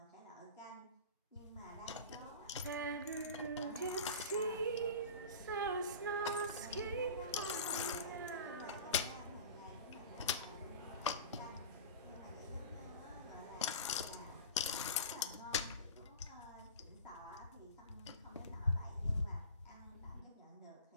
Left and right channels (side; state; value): both; inverted; correlation -0.34